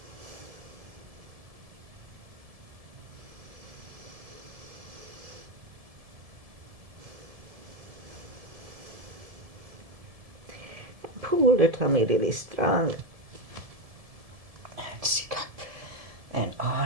Pull the tummy really strong. And sit up. And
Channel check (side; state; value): left; late; 1.7 ms